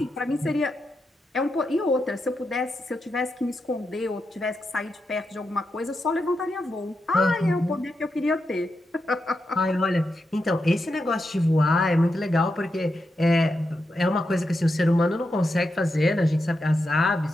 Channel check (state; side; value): normal; both; correlation 0.86